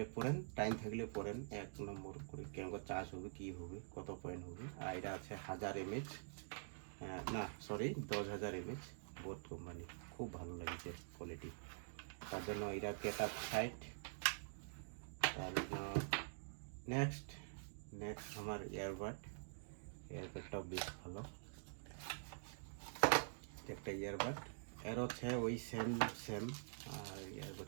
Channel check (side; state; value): left; silent; digital silence